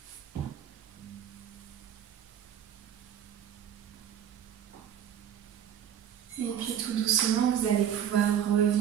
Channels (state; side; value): quieter; left; 9.4 dB